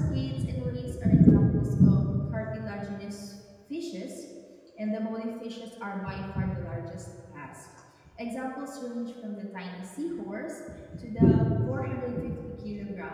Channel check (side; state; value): both; identical; correlation 1.00